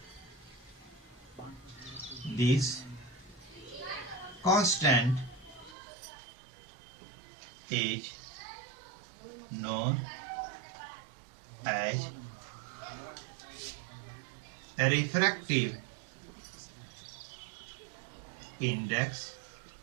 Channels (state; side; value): drops out; left; at 5.8 s